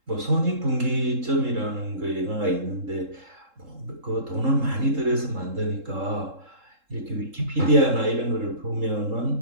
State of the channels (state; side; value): late; left; 3.7 ms